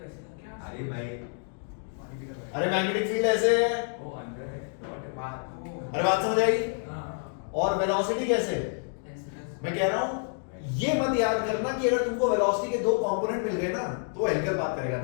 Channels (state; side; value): silent; right; 55 dB below the other